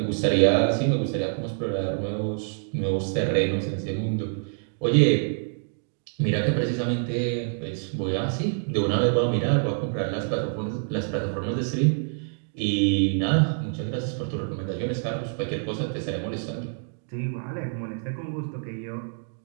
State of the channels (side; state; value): left; silent; digital silence